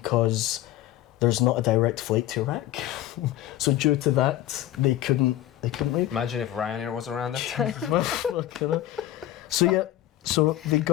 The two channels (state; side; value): quieter; right; 13.6 dB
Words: there's not a direct flight to Iraq. So due to that, they couldn't leave. Imagine if Ryanair was around that time. So they